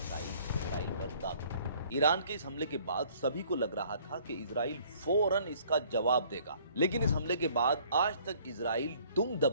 इजराइल पर दाग दी। ईरान के इस हमले के बाद सभी को लग रहा था कि इजराइल फौरन इसका जवाब देगा, लेकिन इस हमले के बाद आज तक इजराइल दुम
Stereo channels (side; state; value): both; inverted; correlation -0.58